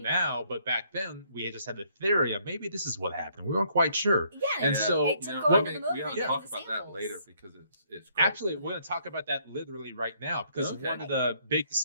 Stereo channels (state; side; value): inverted; both; correlation -0.67